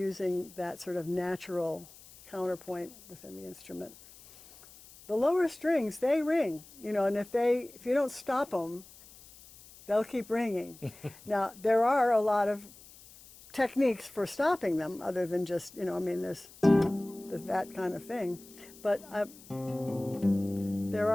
that sort of natural counterpoint within the instrument. The lower strings, they ring, you know, and if you don't stop them, they'll keep ringing. Now, there are a lot of techniques for stopping them, other than just, you know, I mean, there's that kind of thing. But there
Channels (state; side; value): noise; left; hiss, 21 dB below the sound